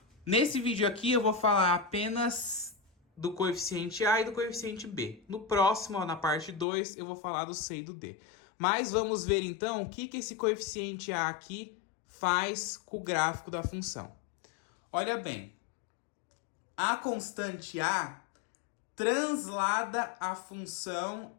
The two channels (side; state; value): right; drops out; at 6.7 s